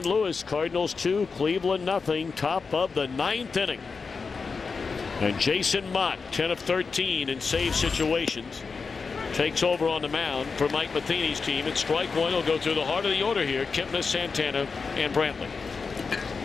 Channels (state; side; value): quieter; right; 4.9 dB